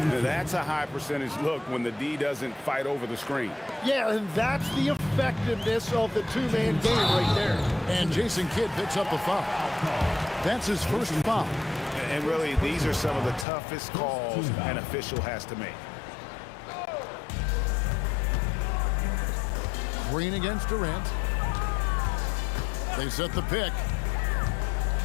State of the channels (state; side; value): drops out; right; at 13.5 s